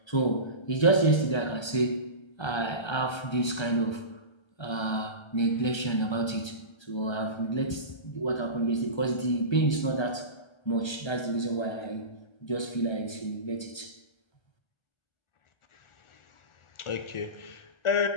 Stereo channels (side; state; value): right; late; 1.3 ms